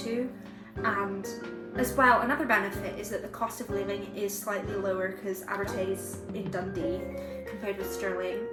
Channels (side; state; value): both; identical; correlation 1.00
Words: And as well, another benefit is that the cost of living is slightly lower because Abertay is in Dundee compared with Stirling.